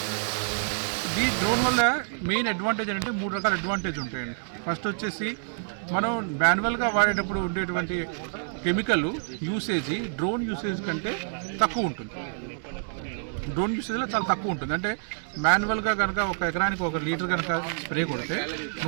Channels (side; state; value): left; silent; digital silence